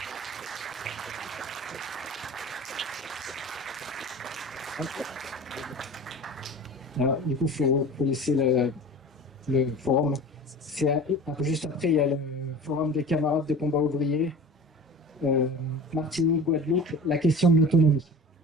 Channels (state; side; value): normal; both; correlation 0.37